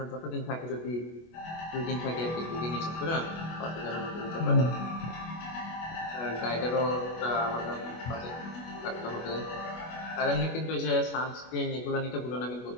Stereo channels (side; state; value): right; late; 25 ms